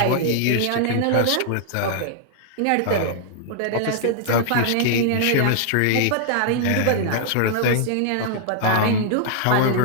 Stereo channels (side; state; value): both; different; correlation 0.00